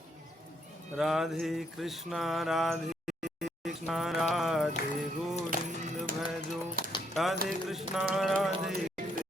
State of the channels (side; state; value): both; normal; correlation 0.72